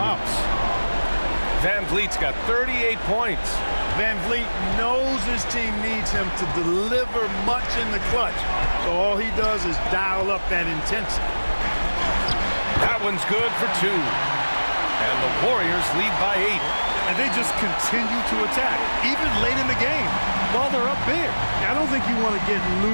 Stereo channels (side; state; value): both; inverted; correlation -1.00